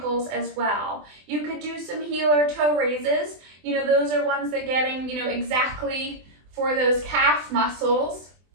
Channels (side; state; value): left; late; 24 ms